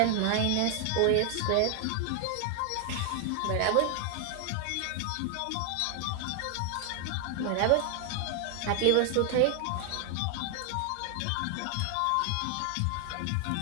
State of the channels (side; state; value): both; different; correlation 0.00